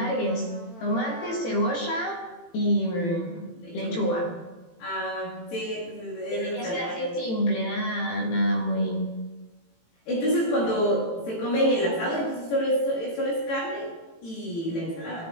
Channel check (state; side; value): late; right; 18 ms